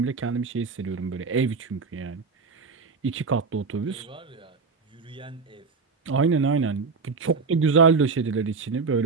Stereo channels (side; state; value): left; quieter; 4.7 dB